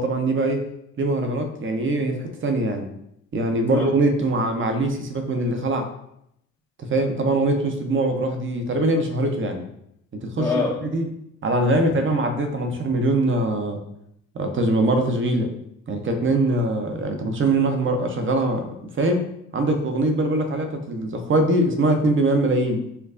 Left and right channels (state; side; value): normal; both; correlation 0.39